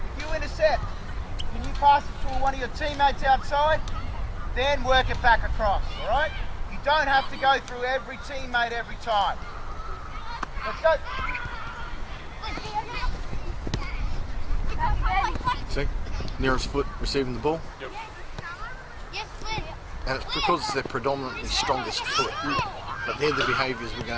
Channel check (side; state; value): both; identical; correlation 1.00